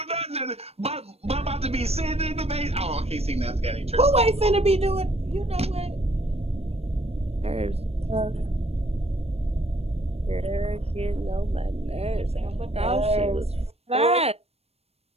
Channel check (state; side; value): late; left; 0.30 ms